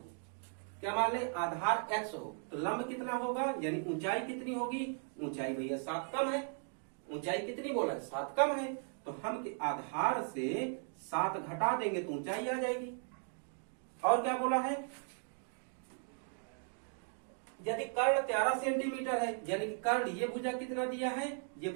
क्या मान लें? आधार x हो, तो लंब कितना होगा, यानी ऊंचाई कितनी होगी? ऊंचाई भैया 7 कम है। ऊंचाई कितनी बोला है? 7 कम है। तो हम आधार से 7 घटा देंगे तो ऊंचाई आ जाएगी। और क्या बोला है? यदि कर्ण 13 सेंटीमीटर है, यानी कि कर्ण ये भुजा कितना दिया है? ये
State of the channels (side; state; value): left; silent; 53 dB below the other